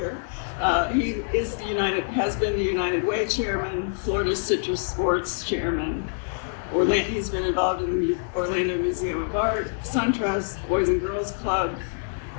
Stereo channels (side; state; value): right; silent; digital silence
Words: He is has been the United Way chairman, Florida Citrus Sports chairman. He's been involved in the Orlando Museum of Art, SunTrust, Boys and Girls Club,